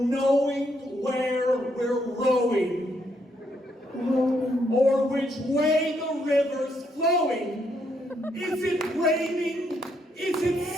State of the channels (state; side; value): normal; both; correlation 0.75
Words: where we're rowing. Or which way the river's flowing. Is it raining? Is it